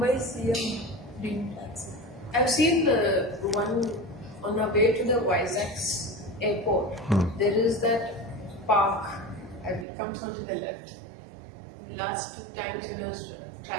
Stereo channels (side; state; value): left; drops out; at 9.9 s